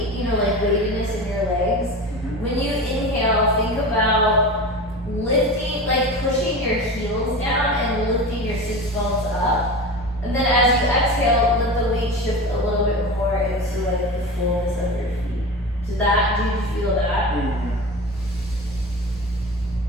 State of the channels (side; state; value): both; normal; correlation 0.30